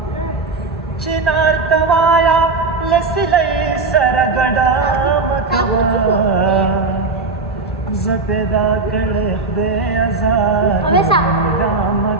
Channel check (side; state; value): left; quieter; 3.9 dB